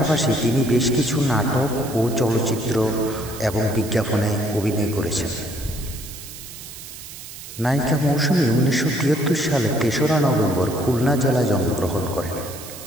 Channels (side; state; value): right; noise; hiss, 13 dB below the sound